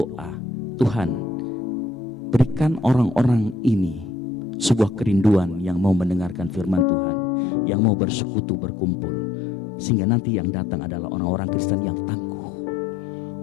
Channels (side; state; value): right; drops out; at 6.9 s